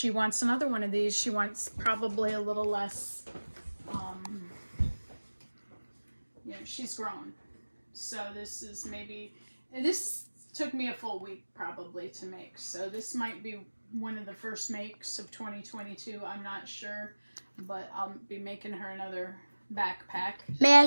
wants another one of these. She wants probably a little less, she's grown. So this is this took me a full week probably to make. So this might be one of the first makes of 2022. I'm not sure, but I'll be making her another backpack. May I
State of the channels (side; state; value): both; inverted; correlation -1.00